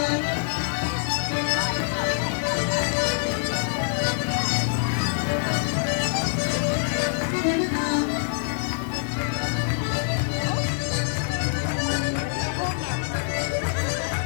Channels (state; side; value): silent; right; 62 dB below the other